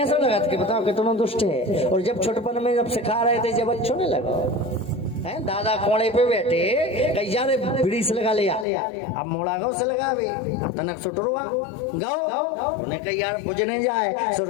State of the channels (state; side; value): drops out; right; at 8.7 s